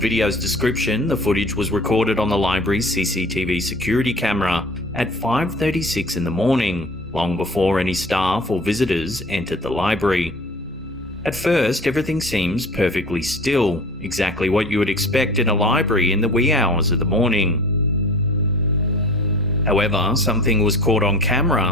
description, the footage was recorded on the library's CCTV security camera at 5:36 in the morning, long before any staff or visitors entered the library. At first, everything seems perfectly still, exactly what you would expect in a library in the wee hours of the morning. However, something was caught on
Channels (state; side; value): normal; both; correlation 0.42